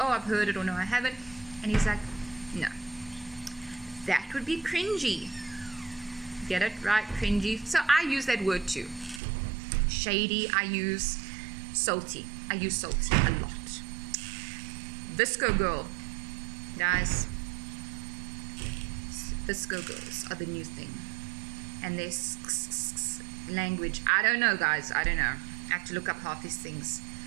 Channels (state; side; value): drops out; left; at 9.2 s